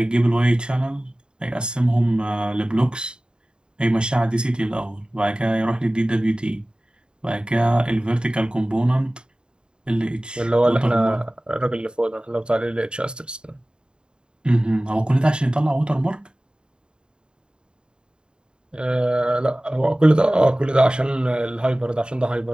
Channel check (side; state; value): left; late; 0.050 ms